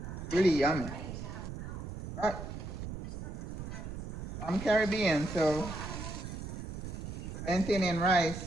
Really yummy. But I'm Caribbean, so plantain and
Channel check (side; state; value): right; noise; rumble, 7 dB below the sound